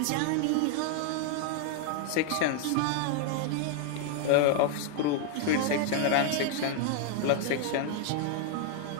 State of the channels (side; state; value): both; different; correlation 0.00